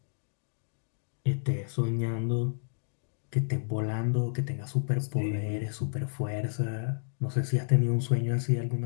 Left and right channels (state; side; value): silent; right; digital silence